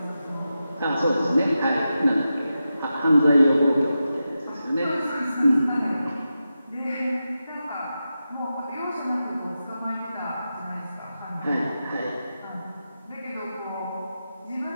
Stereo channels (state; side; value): inverted; both; correlation -0.91